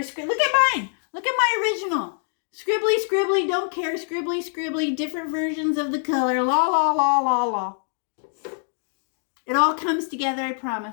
at mine. Look at my original. Scribbly, don't care. Scribbly, different versions of the color. La. It all comes together, I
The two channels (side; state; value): right; silent; 62 dB below the other